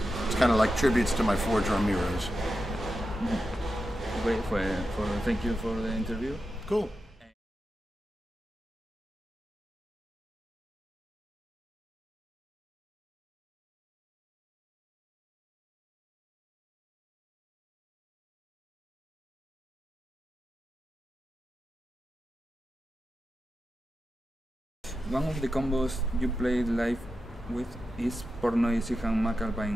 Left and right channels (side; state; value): both; normal; correlation 0.90